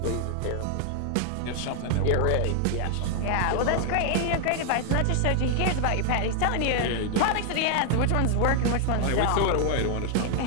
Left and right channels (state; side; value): different; both; correlation 0.00